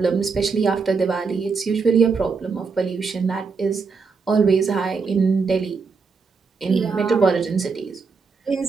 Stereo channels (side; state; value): left; quieter; 4.9 dB